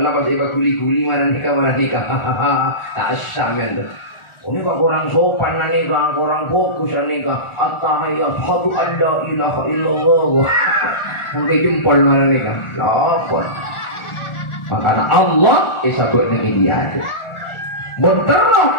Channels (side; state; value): right; late; 1.4 ms